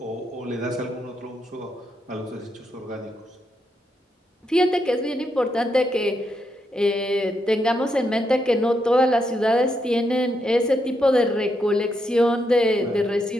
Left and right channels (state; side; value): normal; both; correlation 0.80